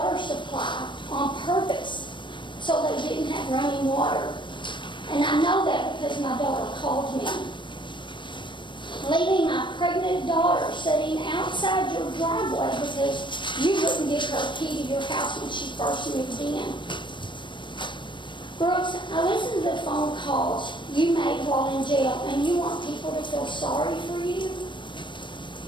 supply on purpose so they didn't have running water. And I know that because my daughter called me. Leaving my pregnant daughter sitting outside your driveway because you wouldn't give her a key to your house when she first moved in. Brooks, I listened to the phone calls you made while in jail, and you want people to feel sorry for you?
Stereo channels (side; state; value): right; late; 0.23 ms